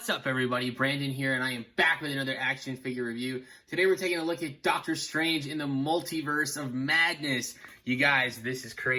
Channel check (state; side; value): identical; both; correlation 1.00